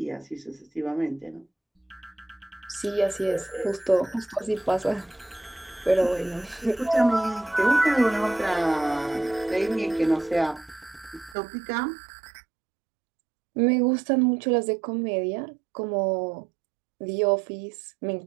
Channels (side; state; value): left; drops out; at 11.4 s